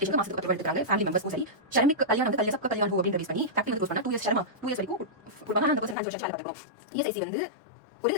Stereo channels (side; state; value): right; drops out; at 6.0 s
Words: மாசத்துக்கு 10 எடுத்துறாங்க ஃபேமிலி மெம்பர்ஸ் சரி ஷர்மிக் கல்யாணம் வந்து கல்யாணம் கல்யாணம் ஹோ அப்படின்ற பேஸ் பண்ணி ஃபேக்டரி வந்து யூஸ் பண்ணா 2 இயர்ஸ் ஷர்மா 2 இயர்ஸ் வரைக்கும் கொடுப்பாங்க 100% 5 வருஷம் வேலை பார்க்கணும் ESIC வந்து ஒரு